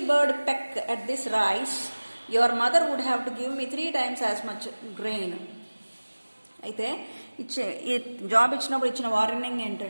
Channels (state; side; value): inverted; both; correlation -1.00